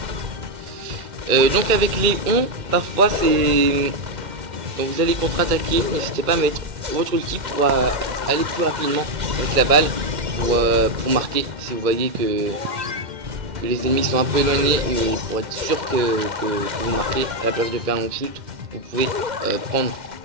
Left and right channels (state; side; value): late; left; 2.1 ms